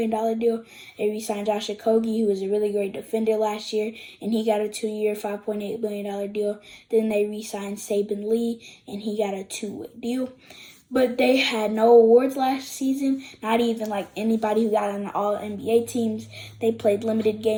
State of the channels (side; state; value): both; identical; correlation 1.00